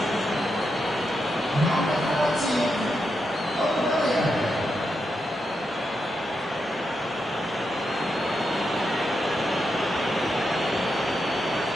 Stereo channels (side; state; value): both; normal; correlation 0.85